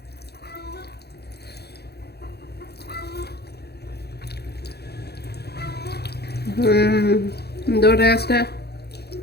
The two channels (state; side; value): late; right; 0.47 ms